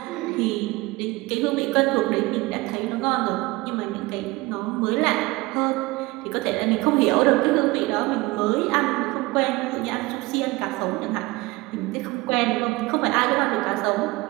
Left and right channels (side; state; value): left; quieter; 22.0 dB